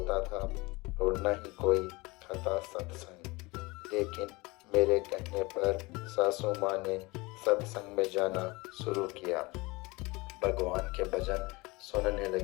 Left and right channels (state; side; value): quieter; right; 23.9 dB